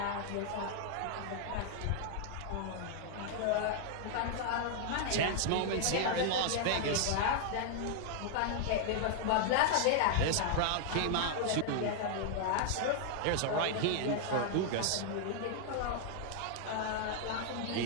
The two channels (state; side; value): different; both; correlation 0.00